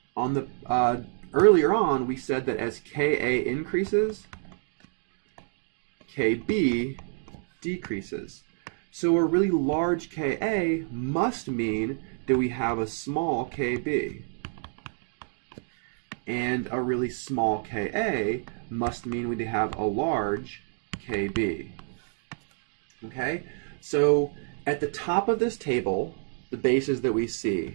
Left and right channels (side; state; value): left; silent; 58 dB below the other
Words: on the earlier on we said that as Ka increases, Kb decreases. So a really large Ka must mean that we have a small Kb. And a really small Ka must mean we have a large Kb. Okay? So at the top of this table, the bases that we